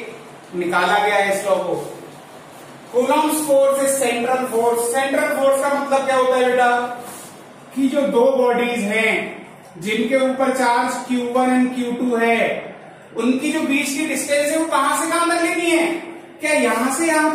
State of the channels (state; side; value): identical; both; correlation 1.00